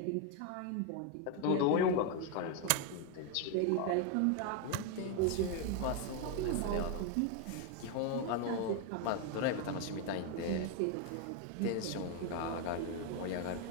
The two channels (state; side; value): different; both; correlation 0.01